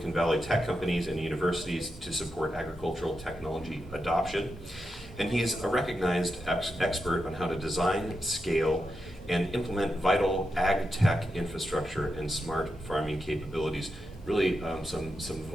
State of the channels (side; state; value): both; normal; correlation 0.87